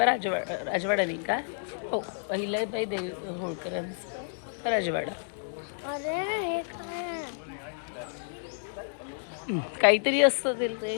राजवाडा नाही का. हो अहिल्याबाई होळकरांचा राजवाडा. काहीतरी असतं ते.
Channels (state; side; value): silent; right; digital silence